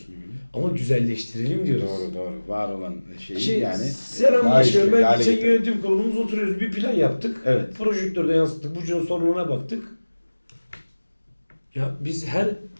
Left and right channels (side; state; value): both; inverted; correlation -1.00